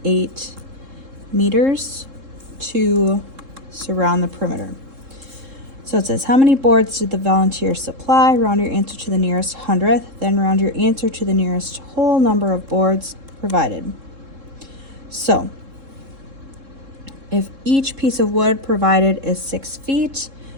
meters to surround the perimeter. So it says, how many boards did the volunteers supply? Round your answer to the nearest hundredth, then round your answer to the nearest whole number of boards provided. So if each piece of wood provided is 6 feet,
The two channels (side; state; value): left; late; 3.7 ms